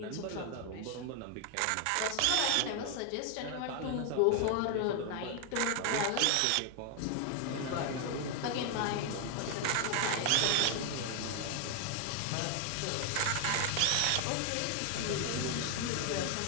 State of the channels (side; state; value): both; different; correlation 0.01